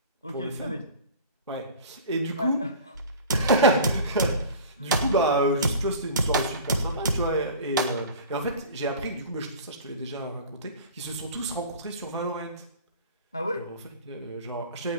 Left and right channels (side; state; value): both; inverted; correlation -0.40